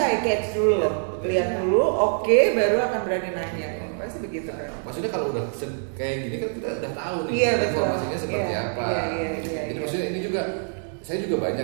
eye catch dulu loh, lihat dulu, oke, baru akan berani nanya. Pasti begitu kan. Maksudnya kalau udah kayak gini kan kita udah tahu nih informasinya seperti apa. Jadi maksudnya ini juga saya juga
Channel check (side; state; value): left; silent; digital silence